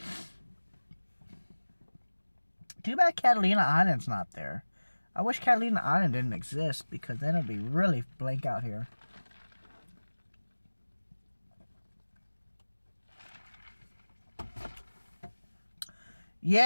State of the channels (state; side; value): inverted; both; correlation -1.00